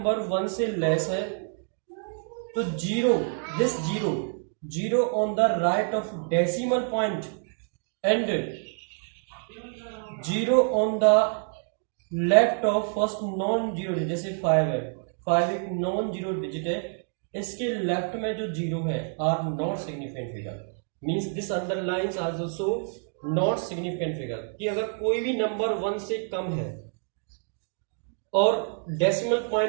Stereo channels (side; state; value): left; silent; 55 dB below the other